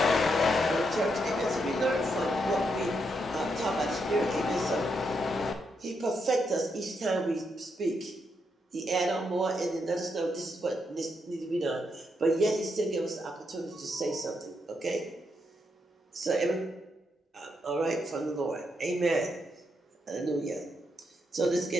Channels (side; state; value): both; normal; correlation 0.80